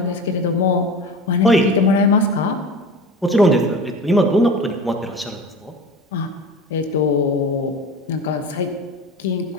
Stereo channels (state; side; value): normal; both; correlation 0.33